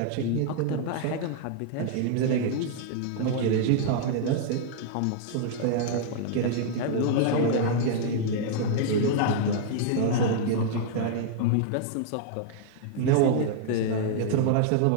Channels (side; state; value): both; different; correlation -0.01